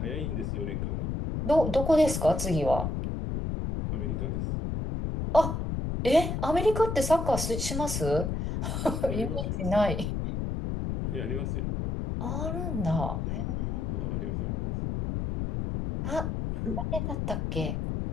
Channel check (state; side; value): noise; left; rumble, 2 dB below the sound